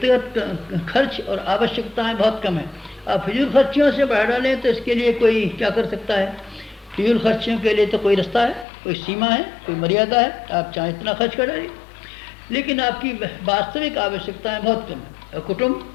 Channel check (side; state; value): right; drops out; at 8.7 s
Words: खर्च और आवश्यकताएं बहुत कम है। आप फिजूल खर्चियों से बढ़ा डालें तो इसके लिए कोई क्या कर सकता है। फिजूल खर्चियों के लिए तो कोई रास्ता है, कोई सीमा है, कोई मर्यादा है। आप चाहे इतना खर्च कर डालिए, लेकिन आपकी वास्तविक आवश्यकताएं बहुत कम है। और